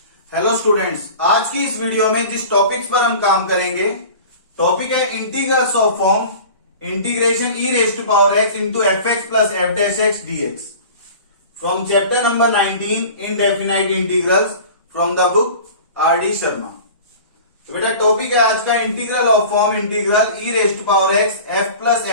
Hello students, आज की इस वीडियो में जिस टॉपिक्स पर हम काम करेंगे टॉपिक है integrals of form integration e raise to power x into f x plus f dash x d x from chapter number 19 indefinite integrals from the book R D Sharma. तो बेटा topic है आज का integral of form integral e raise to power x f plus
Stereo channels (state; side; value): inverted; both; correlation -0.40